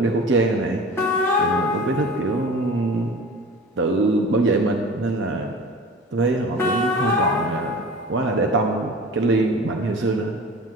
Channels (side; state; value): both; normal; correlation 0.39